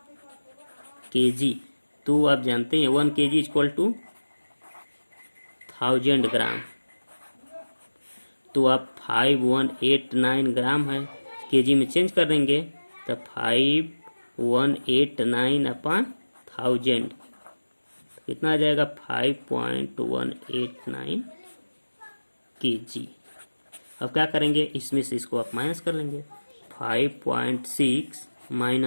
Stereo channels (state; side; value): inverted; both; correlation -1.00